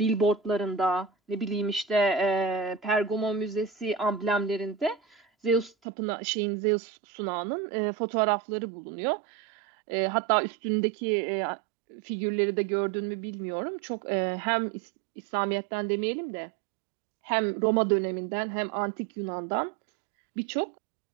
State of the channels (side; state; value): left; drops out; at 5.7 s